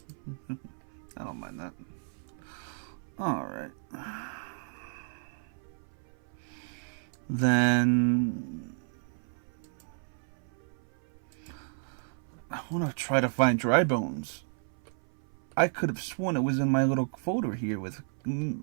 I don't mind that. Alright. Then I want to try to find Dry Bones. I could have sworn it was in my little folder here with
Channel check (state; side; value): silent; left; 56 dB below the other